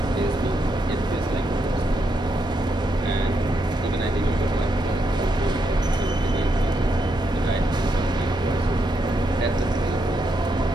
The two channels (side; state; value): both; normal; correlation 0.80